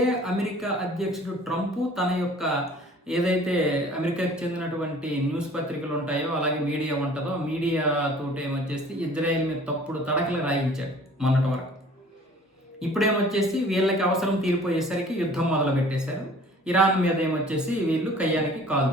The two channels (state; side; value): normal; both; correlation 0.50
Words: అమెరికా అధ్యక్షుడు ట్రంప్ తన యొక్క ఏదైతే అమెరికాకి చెందినటువంటి న్యూస్ పత్రికలు ఉంటాయో అలాగే మీడియా ఉంటుందో మీడియాతోటి ఏమొచ్చేసి ఇజ్రాయెల్ మీద తప్పుడు తడకలు రాయించాడు మొన్నటి వరకు. ఇప్పుడేమొచ్చేసి వీళ్ళకి అవసరం తీరిపోయేసరికి యుద్ధం మొదలు పెట్టేశారు. ఇరాన్ మీద ఏమొచ్చేసి వీళ్ళు కయ్యానికి కాలు